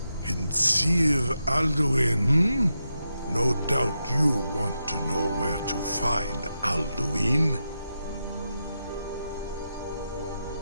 Kinsir Alduin, No doubt you want to know where to find Alduin.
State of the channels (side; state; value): both; inverted; correlation -0.87